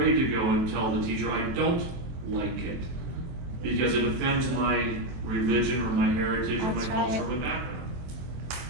to go and tell the teacher I don't like it because it offends my religion or my heritage or my culture or my background.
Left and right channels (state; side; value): late; left; 23 ms